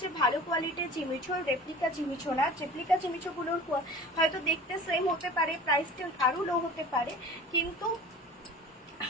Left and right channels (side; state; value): both; normal; correlation 0.40